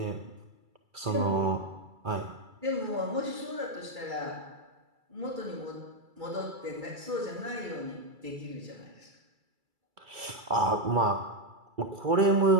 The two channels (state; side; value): late; left; 2.3 ms